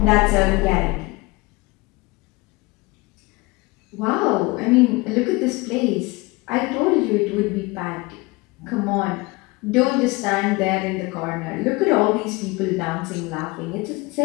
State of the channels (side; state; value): right; quieter; 24.1 dB